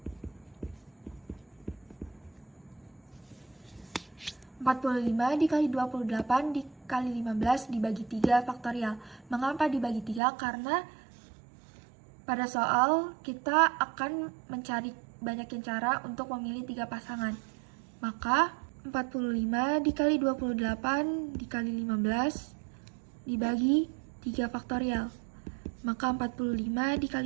45 dikali 28 dikali 15 dibagi 3 faktorial. Mengapa dibagi 3? Karena pada soal kita akan mencari banyakin cara untuk memilih 3 pasangan. Maka 45 dikali 28 dikali 15 dibagi 3 faktorial. Maka 45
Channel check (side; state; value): left; drops out; at 10.2 s